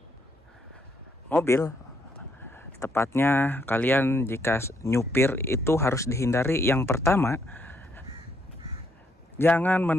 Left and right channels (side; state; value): both; normal; correlation 0.72